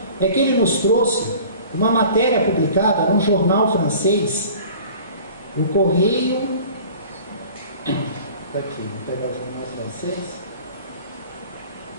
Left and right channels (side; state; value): both; inverted; correlation -0.45